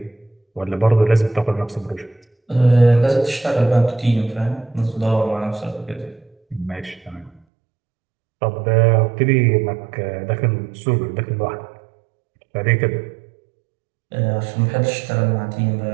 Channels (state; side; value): drops out; left; at 7.4 s